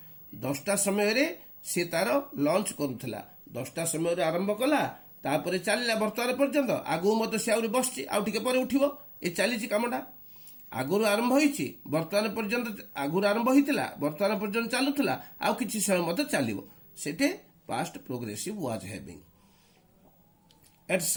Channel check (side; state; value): both; identical; correlation 1.00